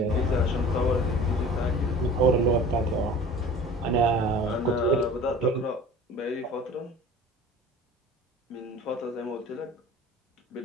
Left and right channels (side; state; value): both; normal; correlation 0.42